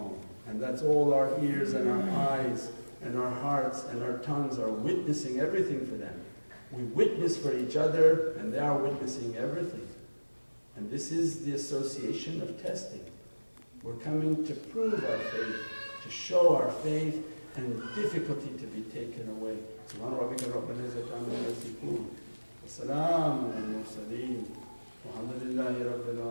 And that's all our ears and our eyes and our hearts and our tongues are witnessing everything for them. We witness for each other and they are witnessing everything. And this is the association of testing. We're coming to prove our faith, to show our faith, and difficulty to be taken away. Subhana rabbika rabbil izzati amma yasifun. Wa salamun alal mursaleen. Walhamdulillahi rabbil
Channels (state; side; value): inverted; both; correlation -1.00